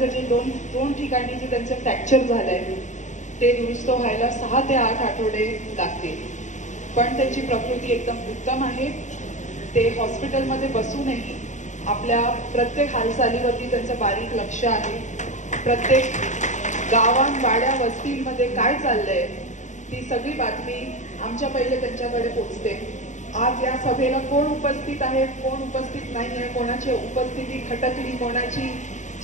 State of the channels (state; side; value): late; right; 0.35 ms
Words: जे दोन ठिकाणी जे त्यांचं फ्रॅक्चर झालंय ते दुरुस्त व्हायला 6 ते 8 आठवडे लागतील, पण त्यांची प्रकृती एकदम उत्तम आहे। ते हॉस्पिटलमध्ये बसूनही आपल्या प्रत्येक हालचालीवरती त्यांचं बारीक लक्ष आहे। प्रत्येक गावात वाड्या वस्तींमध्ये काय चाललंय ती सगळी बातमी आमच्या पहिले त्यांच्याकडे पोहोचते। आज या सभेला कोण उपस्थित आहे कोण उपस्थित नाही आहे, कोणाची उपस्थिती खटकली, कोणाची